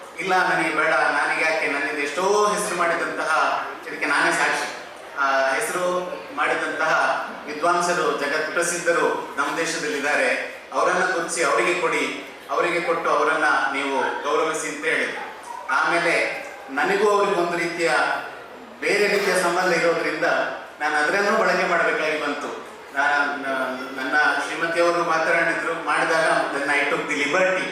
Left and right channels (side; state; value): both; identical; correlation 1.00